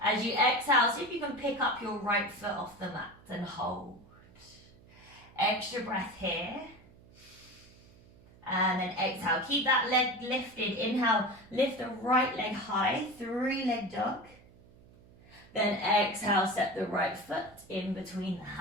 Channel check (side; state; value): right; noise; hum, 25 dB below the sound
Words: As you exhale, see if you can pick up your right foot off the mat and hold. Extra breath here. And then exhale, keep that leg lifted. Inhale, lift the right leg high, 3-leg dog. Then exhale, step the right foot in between the